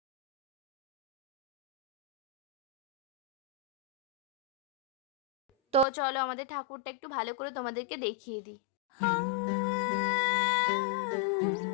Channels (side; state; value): right; drops out; at 5.9 s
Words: তো চলো আমাদের ঠাকুরটা একটু ভালো করে তোমাদেরকে দেখিয়ে দিই।